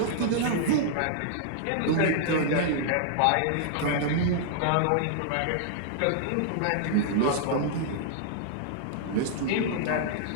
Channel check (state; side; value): different; both; correlation -0.01